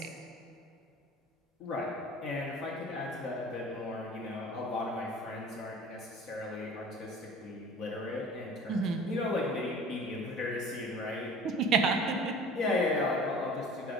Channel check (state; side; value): normal; both; correlation 0.44